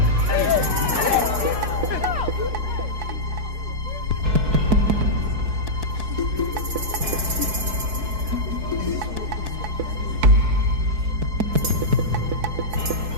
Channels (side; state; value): left; late; 4.6 ms